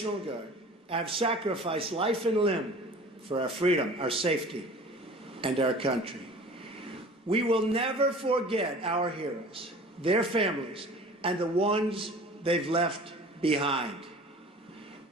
Guard have sacrificed life and limb for our freedom, our safety, and our country. We will never forget our heroes, their families, and the ones they've left behind.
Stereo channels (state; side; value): normal; both; correlation 0.43